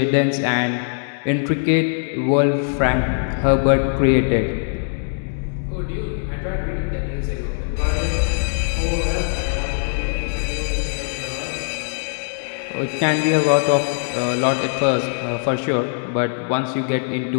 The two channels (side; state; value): right; silent; 65 dB below the other